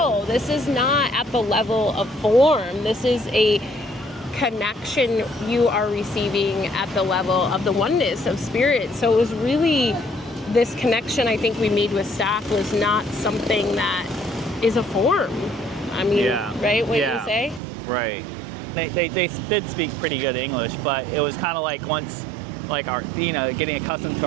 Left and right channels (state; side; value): drops out; left; at 17.6 s